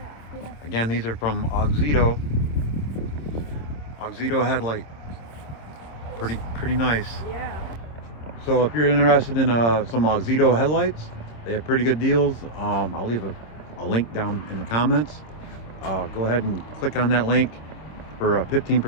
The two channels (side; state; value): right; late; 26 ms